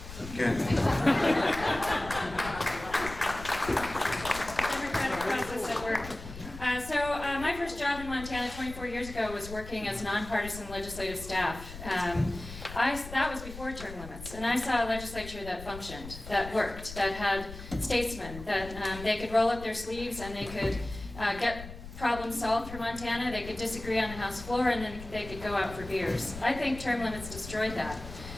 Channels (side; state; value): left; noise; rumble, 12 dB below the sound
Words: Okay. My first job in Montana 24 years ago was working as nonpartisan legislative staff. That was before term limits, and I saw a legislature that functioned, that worked, that had statesmen, that they could roll up their sleeves and they could get problems solved for Montana. They could disagree on the House floor and then they could go out for beers. I think term limits destroyed that.